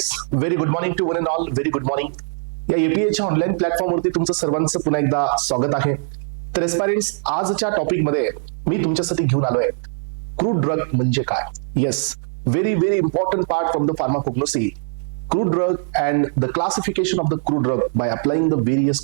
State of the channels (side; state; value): left; silent; 65 dB below the other